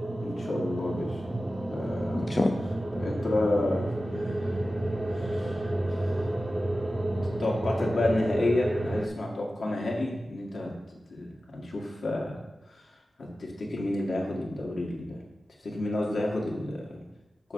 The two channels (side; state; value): both; normal; correlation 0.94